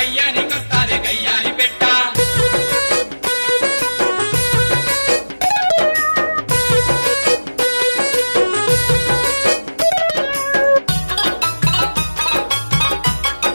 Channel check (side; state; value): both; inverted; correlation -1.00